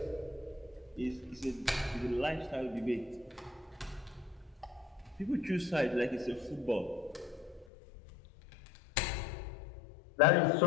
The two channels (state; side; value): drops out; right; at 7.7 s